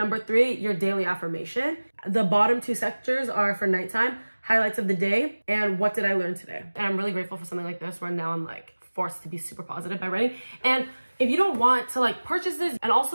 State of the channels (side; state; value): both; inverted; correlation -1.00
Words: 3, your daily affirmation. The bottom 2 sectors are for nighttime, highlights of the day, and what did I learn today? And I'm really grateful for something like this where now I'm like forced to be super positive by writing. And if you don't want to like purchase this, and